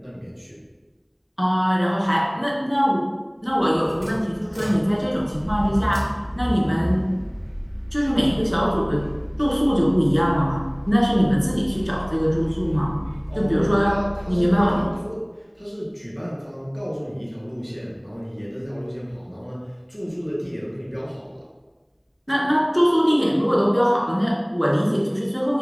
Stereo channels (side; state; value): both; identical; correlation 1.00